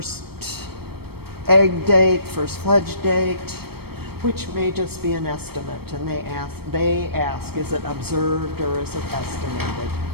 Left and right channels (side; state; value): left; late; 0.96 ms